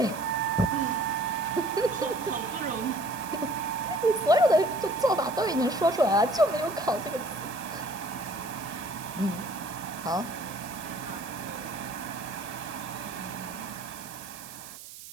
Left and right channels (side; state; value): right; noise; hiss, 14 dB below the sound